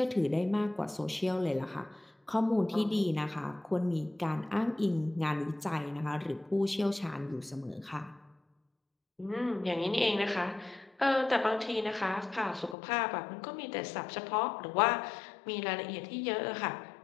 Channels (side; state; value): right; drops out; at 12.8 s